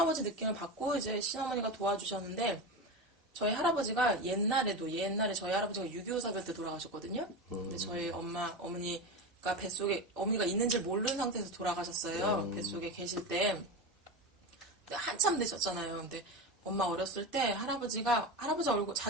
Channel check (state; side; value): normal; both; correlation 0.22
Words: 느낌을 받고 이제 신어머니가 도와주셨는데 저희 할아버지가 옛날에 저희 할아버지가 6.25 사별 때 돌아가셨거든요. 근데 저희 어머니가 뱃속에 어머니가 있는지 모르는 상태에서 돌아가셨어요. 뱃속에 계실 때. 근데 한참 되셨잖아요. 근데 엄마 어렸을 때 할아버지가